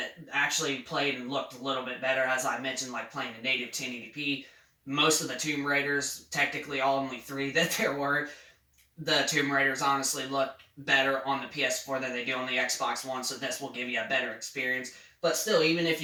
actually played and looked a little bit better, as I mentioned, like playing a native 1080p. Most of the Tomb Raiders, technically only 3 that there were, the Tomb Raiders honestly look better on the PS4 than they do on the Xbox One, so this will give you a better experience. But still, even if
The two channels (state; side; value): identical; both; correlation 1.00